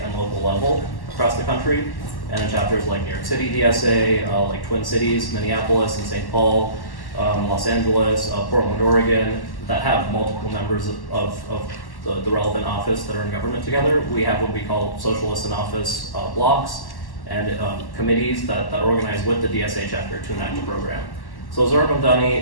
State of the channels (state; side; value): late; right; 1.1 ms